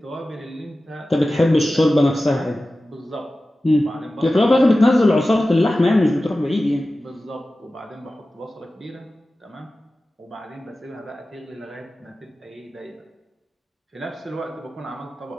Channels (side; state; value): both; normal; correlation 0.95